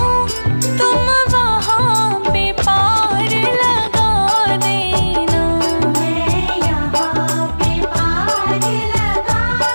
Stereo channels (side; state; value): both; inverted; correlation -1.00